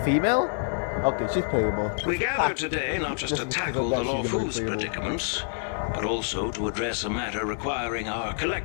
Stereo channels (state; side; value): silent; right; 60 dB below the other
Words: female? Okay, she's playable. We gather today not just to tackle the Luofu's predicaments, but also to address a matter requiring our